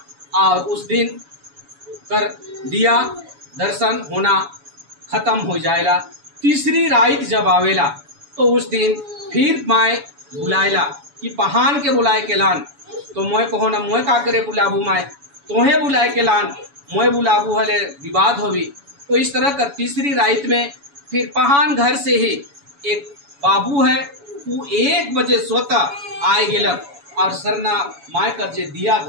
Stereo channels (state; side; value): late; left; 7.1 ms